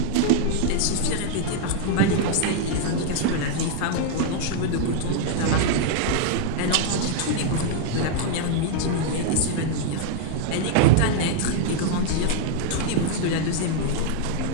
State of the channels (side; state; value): both; different; correlation 0.00